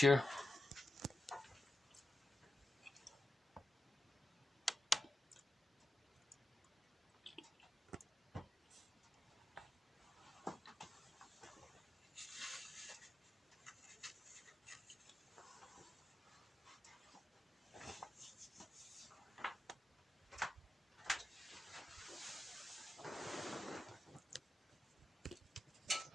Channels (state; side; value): normal; both; correlation 0.90